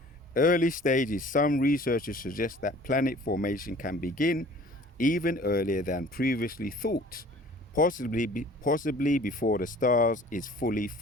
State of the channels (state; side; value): normal; both; correlation 0.50